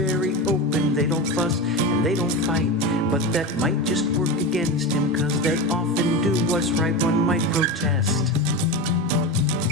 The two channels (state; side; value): normal; both; correlation 0.22